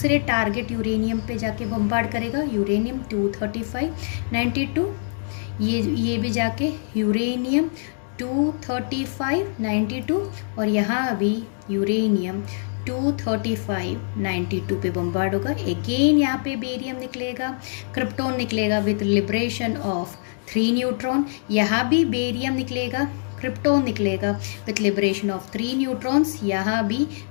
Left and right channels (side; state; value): right; silent; digital silence